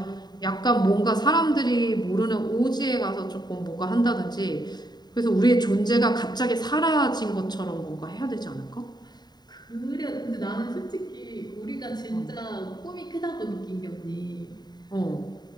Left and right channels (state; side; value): late; right; 0.20 ms